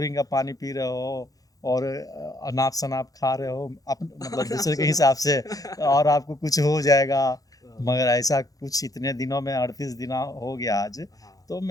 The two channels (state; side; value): late; right; 0.17 ms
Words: का पानी पी रहे हो और अनाप शनाप खा रहे हो मतलब दूसरे के हिसाब से, और आपको कुछ हो जाएगा। मगर ऐसा कुछ इतने दिनों में 38 दिन हो गया आज, तो